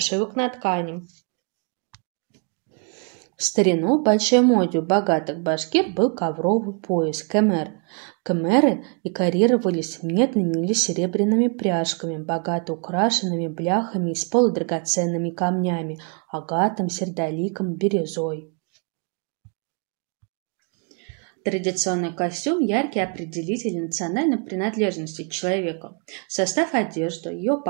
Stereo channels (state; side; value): quieter; left; 38.2 dB